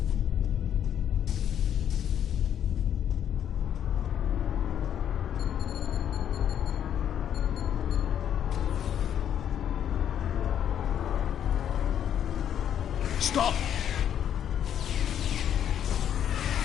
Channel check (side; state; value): right; quieter; 9.6 dB